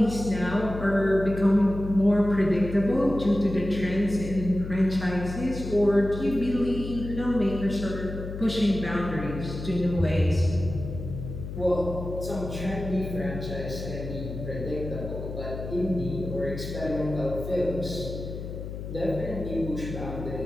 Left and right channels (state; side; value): noise; left; hum, 8 dB below the sound